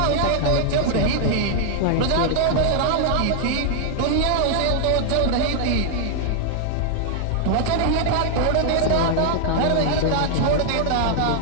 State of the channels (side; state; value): both; different; correlation 0.00